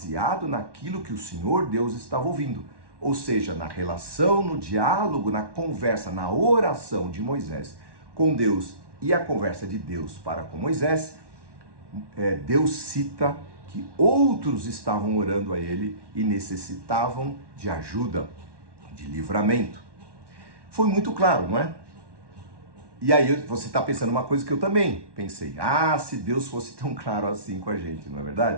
naquilo que o Senhor Deus estava ouvindo. Ou seja, na relação, no diálogo, na conversa, na oração de Moisés com Deus e a conversa de Deus para com Moisés, Deus cita que outros estavam orando a ele e necessitavam de ajuda, de livramento. Foi muito claro, não é? E aí você está pensando uma coisa que eu também pensei. Se Deus fosse tão claro assim com a gente, não é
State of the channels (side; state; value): left; late; 1.1 ms